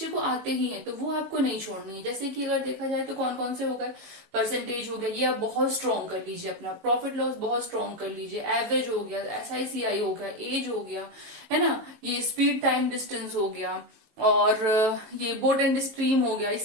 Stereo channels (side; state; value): left; late; 19 ms